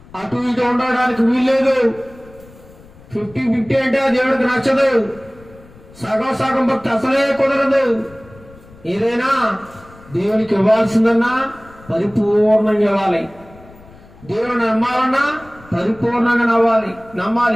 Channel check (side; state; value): left; noise; rumble, 23 dB below the sound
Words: అటు ఇటు ఉండడానికి వీల్లేదు. 50-50 అంటే దేవుడికి నచ్చదు. సగం భక్తి అసలే కుదరదు. ఏదైనా దేవునికి ఇవ్వాల్సిందన్నా పరిపూర్ణంగా ఇవ్వాలి. దేవుని నమ్మాలన్నా పరిపూర్ణంగా